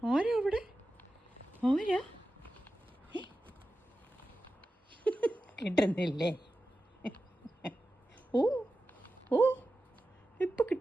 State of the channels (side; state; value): both; normal; correlation 0.93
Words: ആരാ അവിടെ? ആരാ? കിട്ടുന്നില്ലേ? ഓ ഓ ഇപ്പം